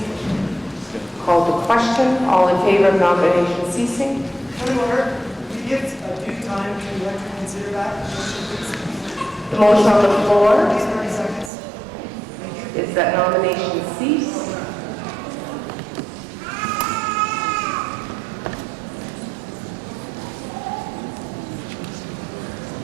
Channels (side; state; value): left; drops out; at 11.5 s